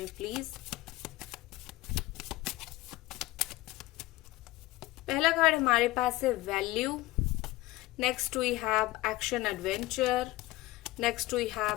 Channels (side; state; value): right; quieter; 18.5 dB